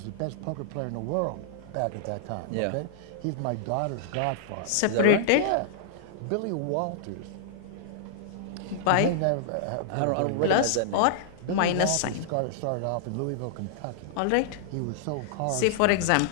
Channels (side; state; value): both; different; correlation -0.01